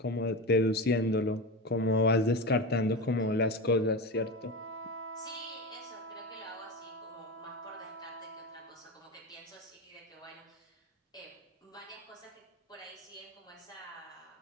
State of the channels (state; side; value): normal; both; correlation 0.21